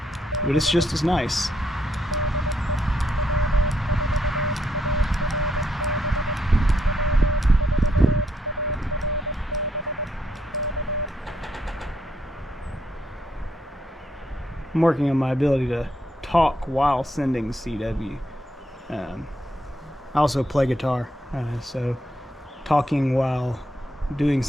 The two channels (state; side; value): normal; both; correlation 0.76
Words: but it's just as nice. I'm working on my ability to talk while sending CW. I also play guitar, so talking while doing